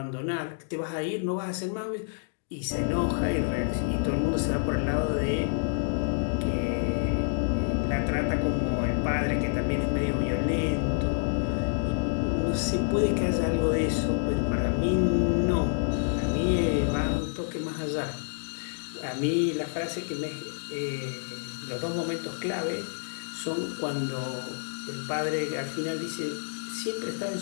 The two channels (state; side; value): silent; right; digital silence